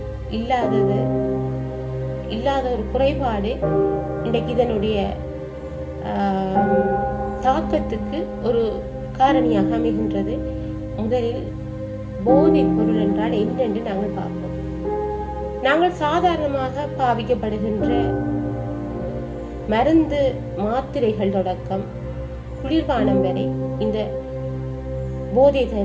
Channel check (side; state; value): both; identical; correlation 1.00